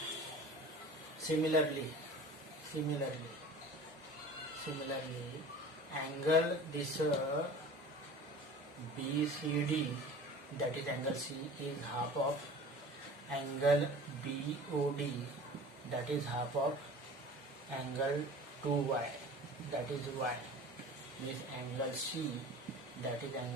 Similarly, angle this BCD, that is angle C, is half of angle BOD, that is half of angle 2y, that is y, means angle C, that is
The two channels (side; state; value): both; normal; correlation 0.40